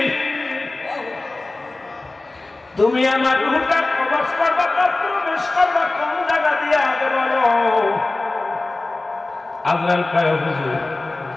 তুমি আমার রূহটা কবজ করবা, প্রবেশ করবা কোন জায়গা দিয়ে আগে বলো। আজরাইল কয় হুজুর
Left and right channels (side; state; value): right; quieter; 3.1 dB